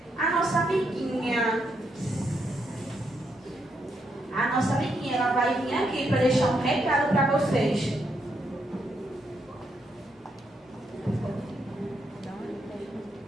A nossa amiguinha. A nossa amiguinha, ela vai vir aqui para deixar um recado para vocês.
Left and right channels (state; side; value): normal; both; correlation 0.78